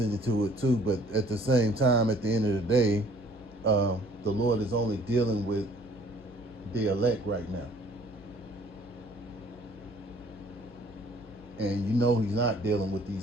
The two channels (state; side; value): noise; left; hum, 23 dB below the sound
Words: it too. But at the same time, at the end of the day, the Lord is only dealing with the elect right now. And he's not dealing with